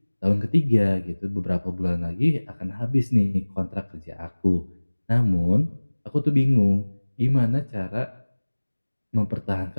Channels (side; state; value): both; inverted; correlation -1.00